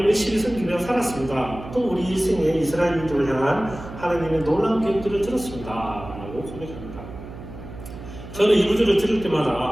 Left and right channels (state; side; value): noise; right; hum, 13 dB below the sound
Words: 열심히 섬기며 살았습니다. 또 우리 일생에 이스라엘 민족을 향한 하나님의 놀라운 계획들을 들었습니다. 라고 고백합니다. 저는 이 구절을 들을